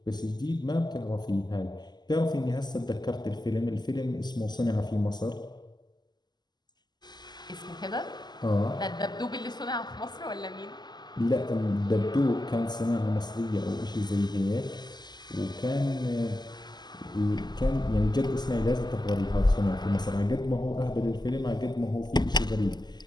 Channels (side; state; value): right; late; 0.21 ms